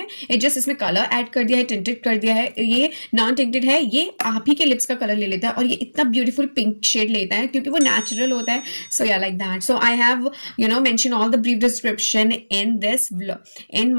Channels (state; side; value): inverted; both; correlation -1.00